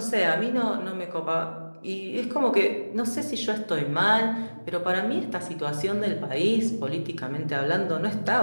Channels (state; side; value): inverted; both; correlation -1.00